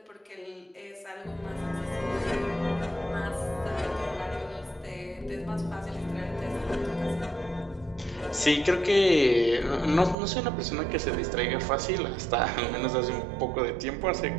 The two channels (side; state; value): left; drops out; at 10.2 s